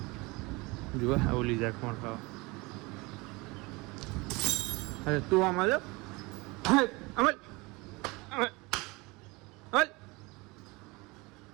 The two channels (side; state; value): left; quieter; 24.7 dB